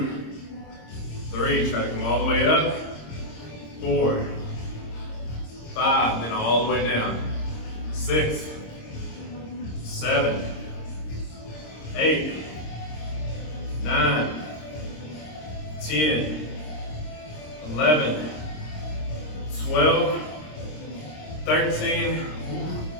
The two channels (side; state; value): right; late; 26 ms